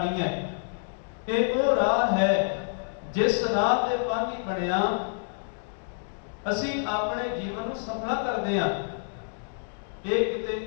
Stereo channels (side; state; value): right; silent; digital silence